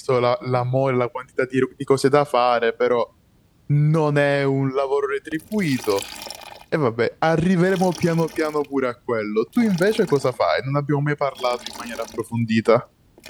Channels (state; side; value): identical; both; correlation 1.00